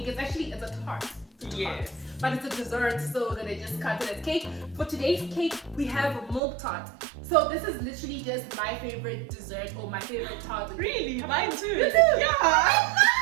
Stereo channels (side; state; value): left; drops out; at 6.4 s